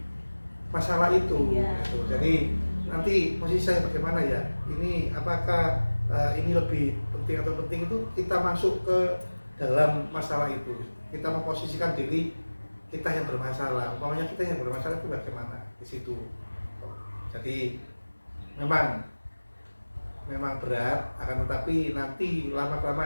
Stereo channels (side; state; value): both; inverted; correlation -1.00